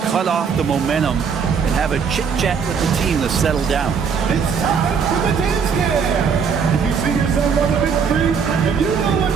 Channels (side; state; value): left; quieter; 6.3 dB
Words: cut off the momentum and have a chit-chat with the team to settle down. It's time for the dance cam. If you see yourself on the big screen and you know what